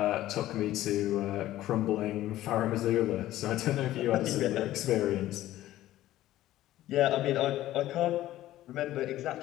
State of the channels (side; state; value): right; quieter; 14.5 dB